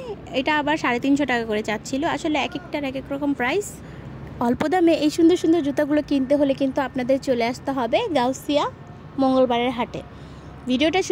এটা আবার 350 টাকা করে চাচ্ছিল। আসলে এক একটার এক এক রকম প্রাইস। অল্প দামে এই সুন্দর সুন্দর জুতাগুলো কিনতে হলে কিন্তু আপনাদের চলে আসতে হবে গাউসিয়া মঙ্গলবারের হাটে। ভিডিওটা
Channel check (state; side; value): identical; both; correlation 1.00